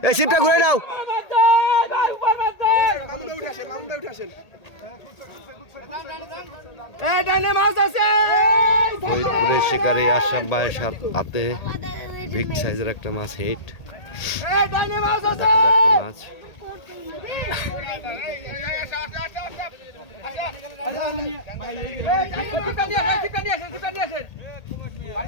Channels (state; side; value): late; right; 1.8 ms